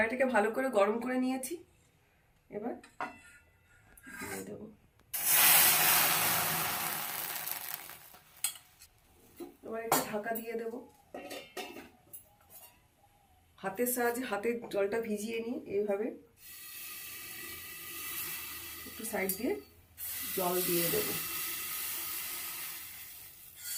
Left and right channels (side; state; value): both; identical; correlation 1.00